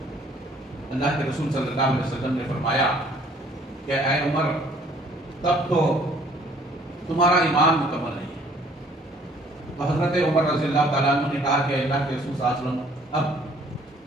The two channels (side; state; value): both; normal; correlation 0.58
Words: اللہ کے رسول صلی اللہ علیہ وسلم نے فرمایا کہ اے عمر تب تو تمہارا ایمان مکمل نہیں ہے۔ تو حضرت عمر رضی اللہ تعالیٰ عنہ نے کہا کہ اللہ کے رسول صلی اللہ علیہ وسلم، اب